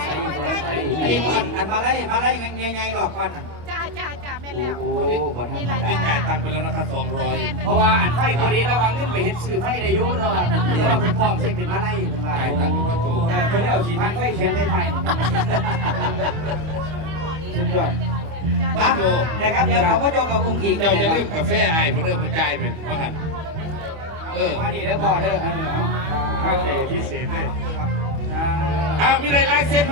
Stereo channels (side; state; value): left; late; 25 ms